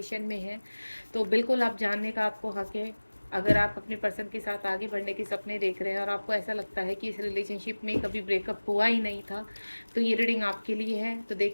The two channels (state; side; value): inverted; both; correlation -1.00